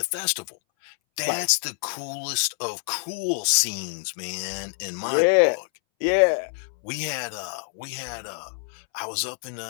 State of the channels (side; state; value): right; silent; 61 dB below the other